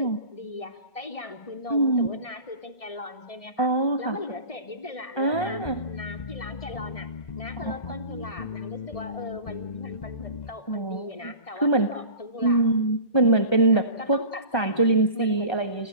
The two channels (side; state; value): right; late; 1.3 ms